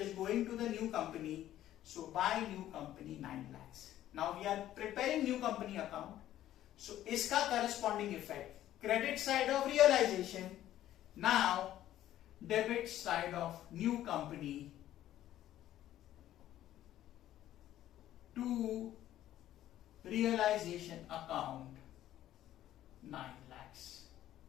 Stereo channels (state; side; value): quieter; right; 12.9 dB